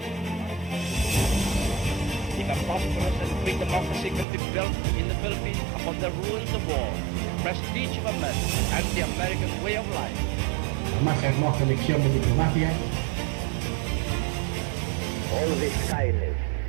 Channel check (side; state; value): left; drops out; at 4.2 s